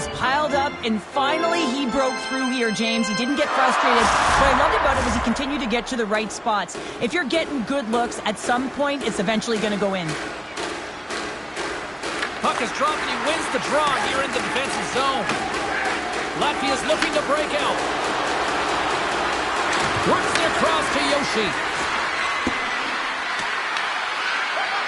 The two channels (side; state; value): both; identical; correlation 1.00